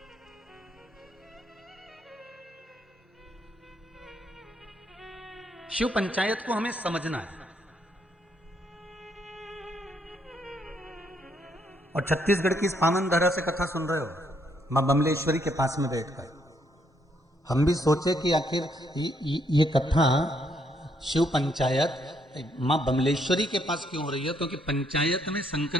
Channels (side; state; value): both; normal; correlation 0.72